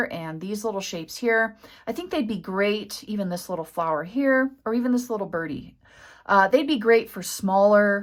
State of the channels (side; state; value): both; identical; correlation 1.00